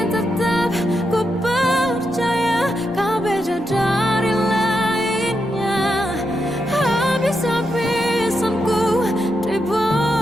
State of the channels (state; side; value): normal; both; correlation 0.84